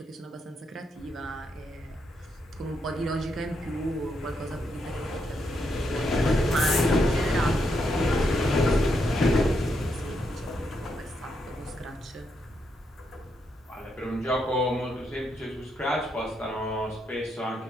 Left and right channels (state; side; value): normal; both; correlation 0.80